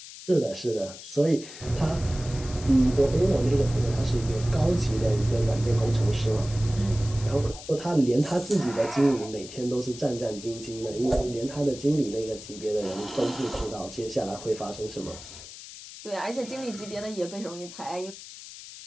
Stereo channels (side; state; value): left; noise; hiss, 14 dB below the sound